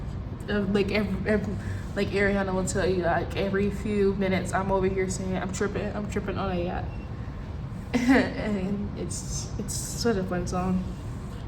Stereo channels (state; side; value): identical; both; correlation 1.00